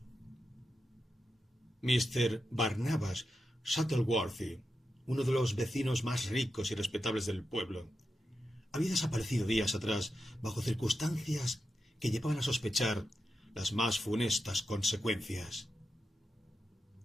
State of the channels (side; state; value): both; normal; correlation 0.88